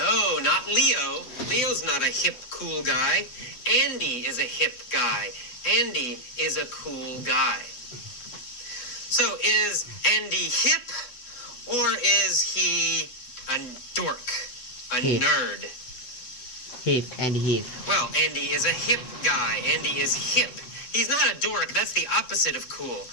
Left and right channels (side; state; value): right; late; 8.2 ms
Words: not Leo. Leo's not a hip, cool guy. Andy is a hip guy. Andy is a cool guy. So is Andy hip, or is he a dork, a Hip. nerd? Hip, Andy hip. Well, Andy is a hip guy. Andy is hip. He's not a dork. That's the opposite of cool.